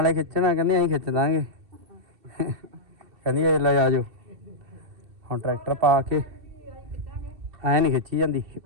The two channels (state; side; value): late; left; 2.7 ms